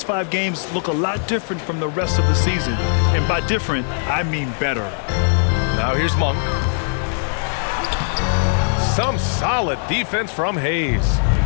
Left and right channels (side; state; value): right; silent; digital silence